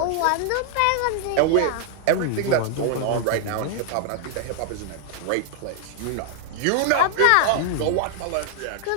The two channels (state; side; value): different; both; correlation 0.00